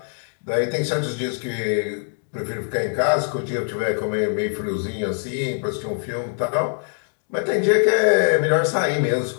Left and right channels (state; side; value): silent; right; 57 dB below the other